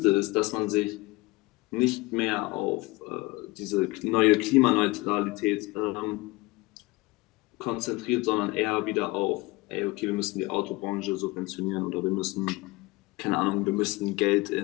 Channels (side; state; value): right; quieter; 22.6 dB